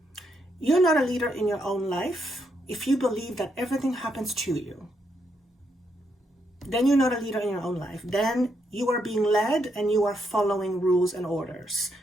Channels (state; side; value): normal; both; correlation 0.78